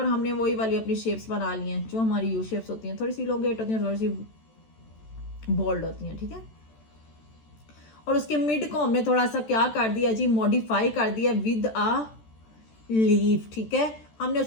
हमने वही वाली अपनी शेप्स बना ली हैं जो हमारी यू शेप्स होती हैं, थोड़ी सी इलोंगेट होती हैं, थोड़ी सी बोल्ड होती हैं, ठीक है। और उसके मिड को हमने थोड़ा सा क्या कर दिया जी, मॉडिफाई कर दिया विद अ लीफ, ठीक है। हमने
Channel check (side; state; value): right; late; 14 ms